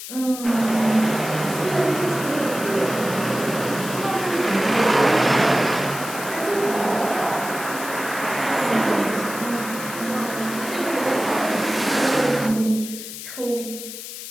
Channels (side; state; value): left; noise; hiss, 10 dB below the sound